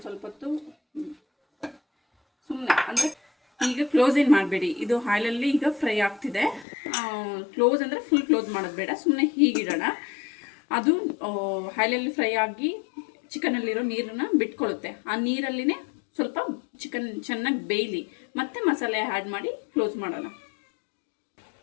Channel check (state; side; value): drops out; right; at 6.7 s